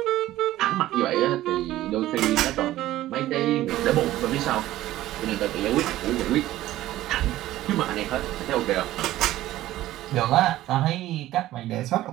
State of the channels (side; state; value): left; quieter; 15.0 dB